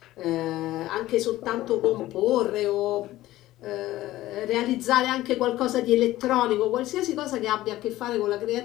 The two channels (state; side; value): quieter; right; 15.8 dB